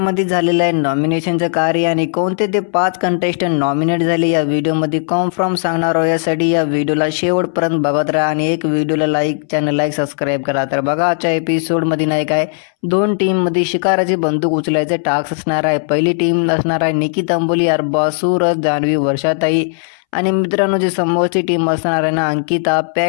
झालेलं आहे नॉमिनेशनचं कार्य आणि कोणते ते 5 कंटेस्टंट नॉमिनेट झाले या व्हिडिओमध्ये कन्फर्म सांगणार आहोत। यासाठी या व्हिडिओला शेवटपर्यंत बघत राहा आणि एक व्हिडिओला लाईक, चॅनलला सबस्क्राईब करा। तर बघा, आजच्या एपिसोडमध्ये नाही काय 2 टीममध्ये शिकाराची बंदूक उचलायचे टास्क असणार आहे। पहिली टीम असणार आहे निकी अंबोली, अरबाज, सूरज, जान्हवी, वर्षाताई आणि मित्रांनो जी समोरची टीम असणार आहे ना, अंकिता,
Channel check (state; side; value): silent; right; 66 dB below the other